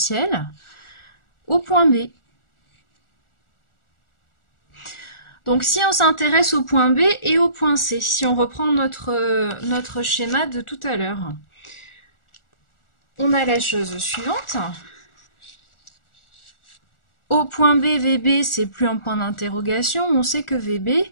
au point B. Donc si on s'intéresse au point B et au point C, si on reprend notre schéma de tout à l'heure, on a la chose suivante. Au point B, VB, c'est plus un point d'interrogation. On sait que VB,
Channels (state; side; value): late; right; 1.4 ms